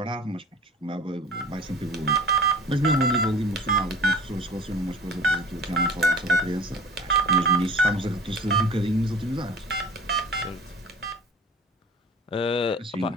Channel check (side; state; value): both; normal; correlation 0.42